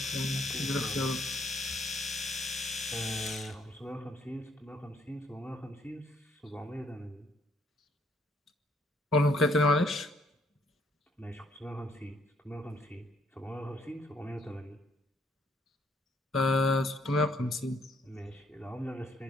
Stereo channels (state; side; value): normal; both; correlation 0.68